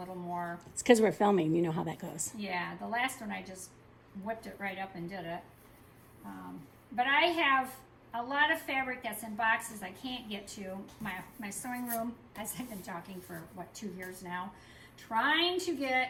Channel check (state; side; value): identical; both; correlation 1.00